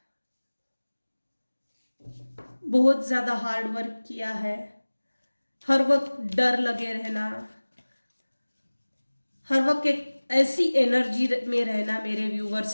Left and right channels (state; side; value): inverted; both; correlation -1.00